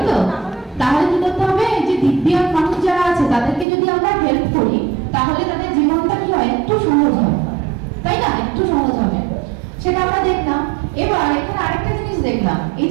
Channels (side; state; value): left; drops out; at 3.7 s